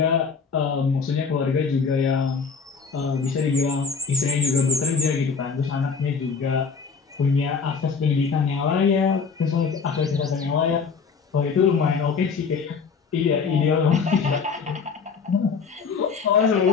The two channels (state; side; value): quieter; right; 5.4 dB